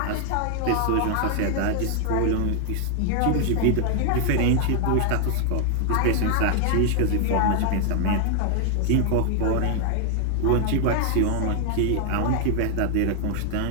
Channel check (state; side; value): different; both; correlation 0.00